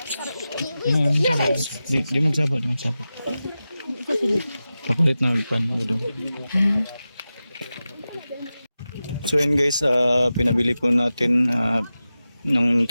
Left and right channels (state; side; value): inverted; both; correlation -0.94